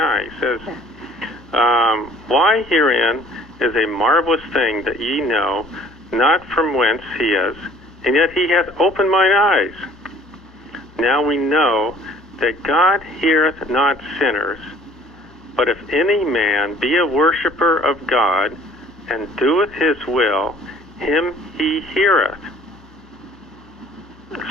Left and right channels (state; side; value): noise; left; hum, 28 dB below the sound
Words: He says, why herein is a marvelous thing that ye know not from whence he is, and yet he hath opened mine eyes. Now we know that God heareth not sinners, but if any man be a worshipper of God, and doeth his will, him he heareth.